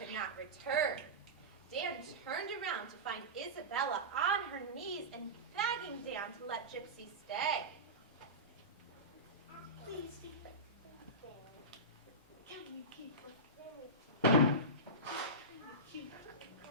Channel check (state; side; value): normal; both; correlation -0.18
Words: not return. Dan turned around to find Isabella on her knees and begging Dan to let Gypsy stay. Please, can you keep her? Cute